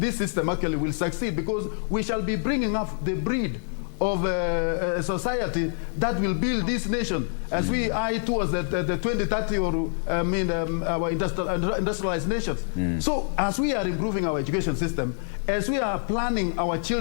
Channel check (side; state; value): right; silent; 61 dB below the other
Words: system actually will succeed, because we shall be bringing up the breed of a society that will build this nation as we eye towards the 2030 or our industrialized nations. So as we are improving our education system, as we are planning our